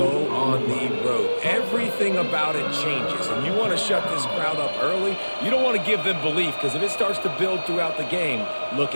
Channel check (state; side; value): inverted; both; correlation -1.00